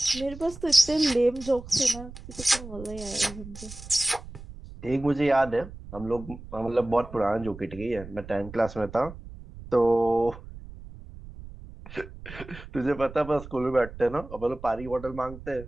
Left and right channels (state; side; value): noise; right; rumble, 15 dB below the sound